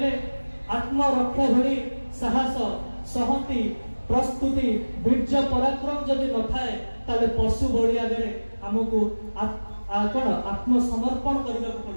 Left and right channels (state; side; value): inverted; both; correlation -1.00